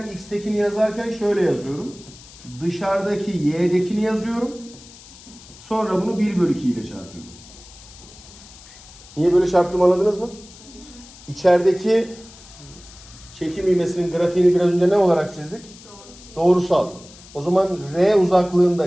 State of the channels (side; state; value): left; noise; hiss, 20 dB below the sound